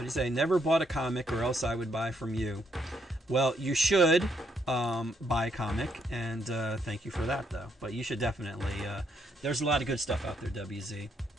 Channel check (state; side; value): normal; both; correlation 0.74